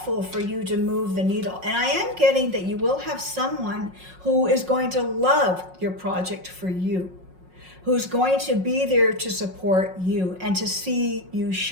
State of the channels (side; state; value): left; late; 5.5 ms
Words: for you to move the needle. And I am getting that you will have someone who is going to love your project for you, who's going to be there to support you and to see you